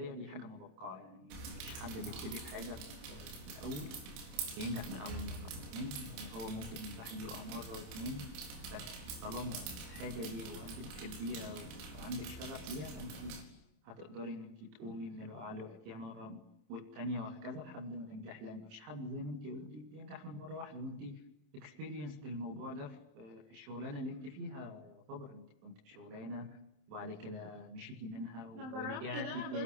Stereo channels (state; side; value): late; left; 27 ms